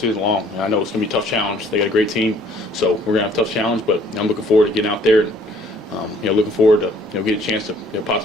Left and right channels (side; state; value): both; normal; correlation 0.59